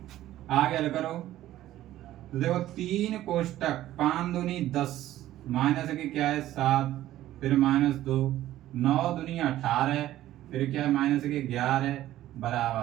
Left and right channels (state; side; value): quieter; left; 14.0 dB